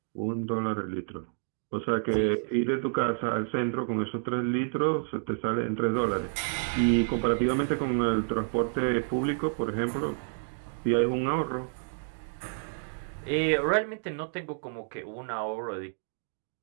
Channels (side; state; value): left; silent; digital silence